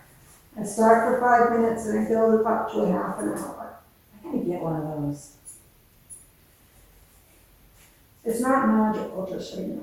I start for 5 minutes and I build it up to a half an hour. I gotta get one of those. It's not magical, just so you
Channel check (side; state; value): both; identical; correlation 1.00